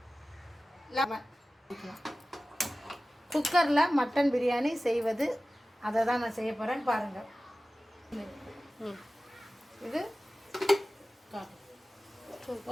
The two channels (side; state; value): both; normal; correlation 0.96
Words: லெமன். குக்கரில் மட்டன் பிரியாணி செய்வது அதை தான் நான் செய்ய போகிறேன்னு பாருங்கள். இது